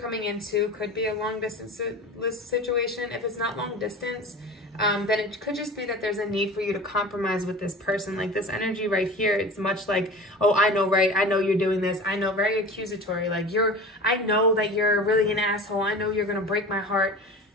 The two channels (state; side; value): normal; both; correlation 0.36